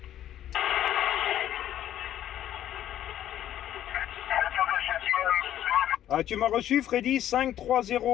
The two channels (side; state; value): right; quieter; 11.7 dB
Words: Ah, tu m'as reçu, Freddy,